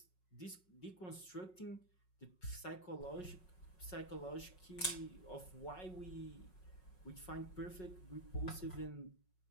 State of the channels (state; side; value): late; right; 5.4 ms